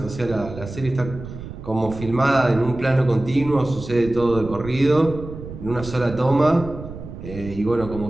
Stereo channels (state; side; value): noise; right; rumble, 12 dB below the sound